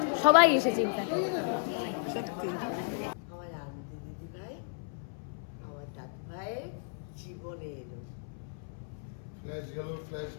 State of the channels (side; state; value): right; silent; 55 dB below the other